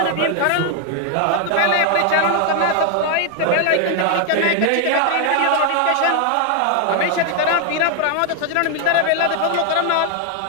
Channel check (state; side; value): different; both; correlation 0.00